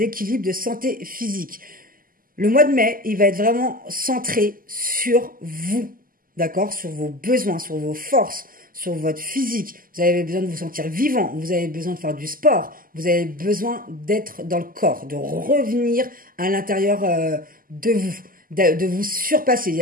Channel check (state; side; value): late; left; 0.41 ms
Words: de santé physique. Le mois de mai, il va être vraiment centré sur vous, d'accord? Sur vos besoins, sur vos forces, sur votre physique. Vous avez besoin de vous sentir vivant, vous avez besoin de faire du sport, vous avez besoin d'être dans le corps, de revenir à l'intérieur de vous. de vous surpasser. Il y